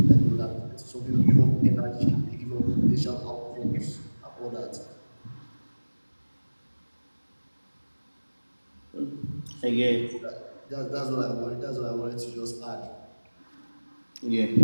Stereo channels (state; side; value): inverted; both; correlation -1.00